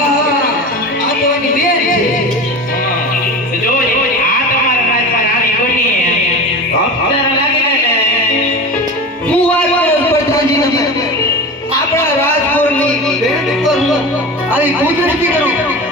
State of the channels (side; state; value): both; normal; correlation 0.30